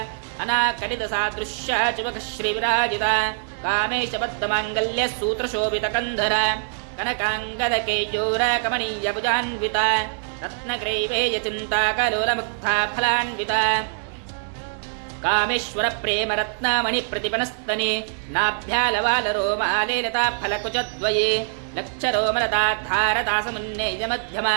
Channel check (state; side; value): silent; left; digital silence